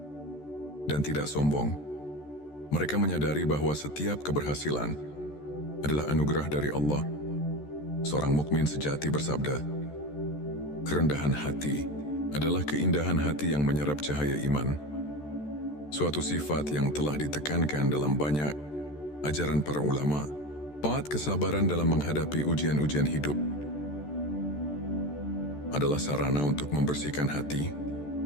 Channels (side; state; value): right; late; 14 ms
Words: dan tidak sombong. Mereka menyadari bahwa setiap keberhasilan adalah anugerah dari Allah. Seorang mukmin sejati bersabda, kerendahan hati adalah keindahan hati yang menyerap cahaya iman. Suatu sifat yang telah ditekankan dalam banyak ajaran para ulama. 4. Kesabaran dalam menghadapi ujian-ujian hidup adalah sarana untuk membersihkan hati.